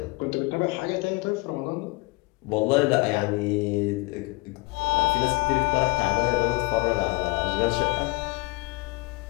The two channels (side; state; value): right; quieter; 24.4 dB